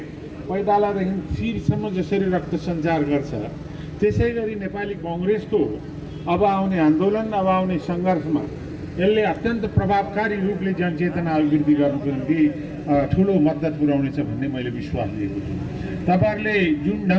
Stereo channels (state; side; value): identical; both; correlation 1.00